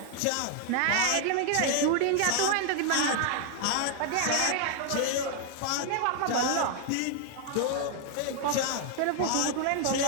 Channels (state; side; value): different; both; correlation 0.00